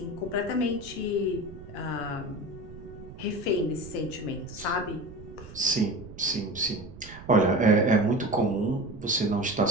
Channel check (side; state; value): right; noise; rumble, 15 dB below the sound